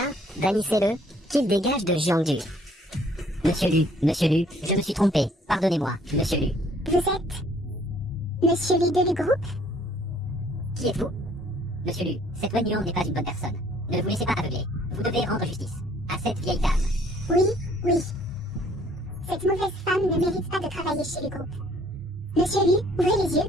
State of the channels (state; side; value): normal; both; correlation 0.60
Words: bannissez-le, qu'il dégage de Jiangdu. Monsieur Lu, je me suis trompé. Pardonnez-moi, Monsieur Lu. Vous êtes Monsieur Lu de Lugroup? Qui êtes-vous? Monsieur Lu, cette Wenyan n'est pas une bonne personne. Ne vous laissez pas aveugler. Vous devez rendre justice à cette vieille dame. Oui. Cette mauvaise femme ne mérite pas de travailler chez Lugroup. Monsieur Lu, ouvrez les yeux,